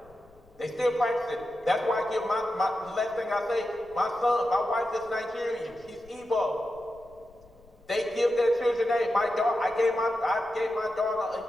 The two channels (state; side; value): noise; left; rumble, 27 dB below the sound